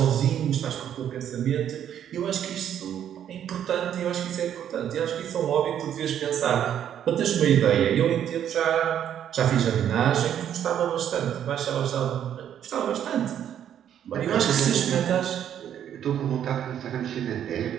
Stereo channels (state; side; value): quieter; left; 9.9 dB